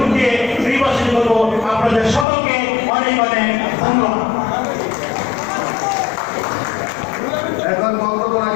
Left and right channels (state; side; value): drops out; right; at 2.2 s